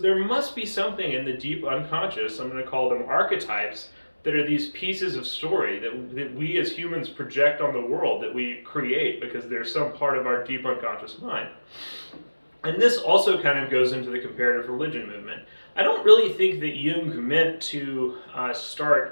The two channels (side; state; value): both; inverted; correlation -1.00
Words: must be something in the deep unconscious, I'm going to call them archetypes, that are these pieces of story that we as humans project on the world, that we create because they're some part of our deep unconscious mind. And this also kind of goes into the comparative religion movement. I don't really think that Jung meant to